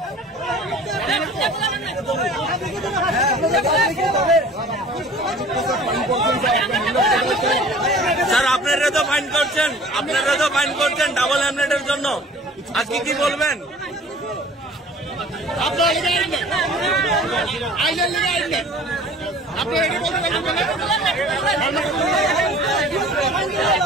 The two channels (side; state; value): both; normal; correlation 0.46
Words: স্যার, আপনারা তো ফাইন করছেন ডাবল হেলমেটের জন্য, আজকে কি বলবেন?